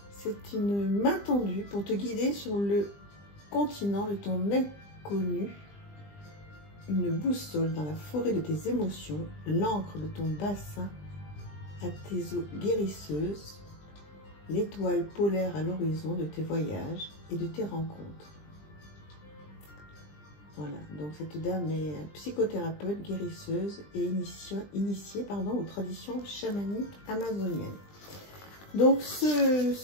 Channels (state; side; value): late; right; 20 ms